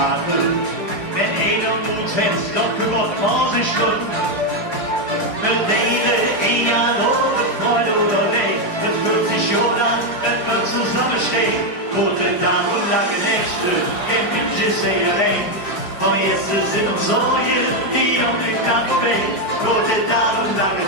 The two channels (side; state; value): right; late; 5.1 ms